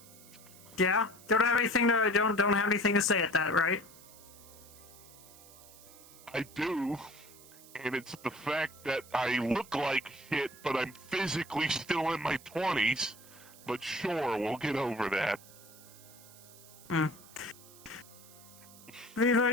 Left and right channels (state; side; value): noise; right; hiss, 21 dB below the sound